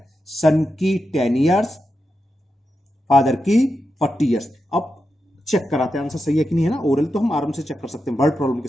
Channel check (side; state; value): both; normal; correlation 0.88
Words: सन की 10 ईयर्स, फादर की 40 ईयर्स। अब चेक कराते हैं आंसर सही है कि नहीं, है ना? ओरल तो हम आराम से चेक कर सकते हैं, वर्ड प्रॉब्लम के